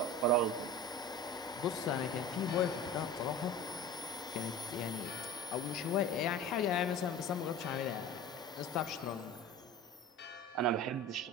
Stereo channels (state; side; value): normal; both; correlation 0.35